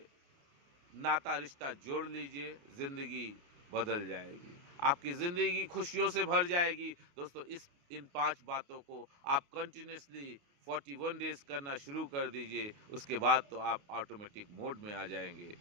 नाता रिश्ता जोड़ लीजिए, जिंदगी बदल जाएगी, आपकी जिंदगी खुशियों से भर जाएगी। दोस्तों, इन 5 बातों को आप कंटिन्यूसली 41 डेज करना शुरू कर दीजिए। उसके बाद तो आप ऑटोमेटिक मोड में आ जाएंगे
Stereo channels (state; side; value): late; left; 29 ms